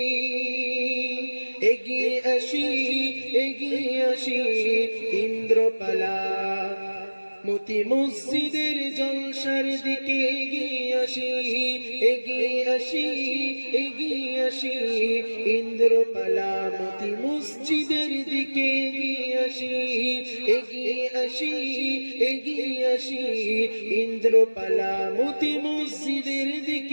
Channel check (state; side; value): inverted; both; correlation -1.00